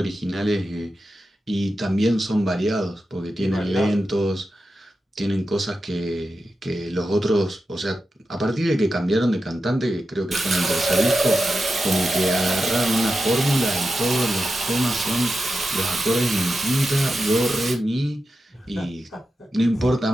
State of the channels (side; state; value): both; normal; correlation 0.90